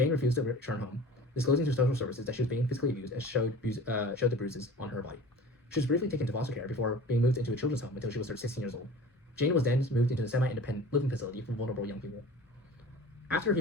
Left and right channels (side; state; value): both; normal; correlation 0.41